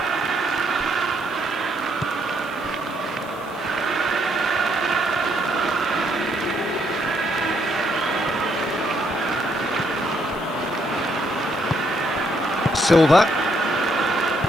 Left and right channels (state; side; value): noise; left; hiss, 24 dB below the sound